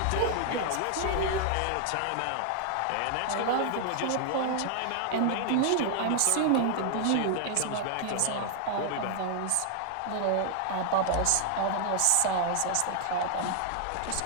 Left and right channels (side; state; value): both; different; correlation 0.00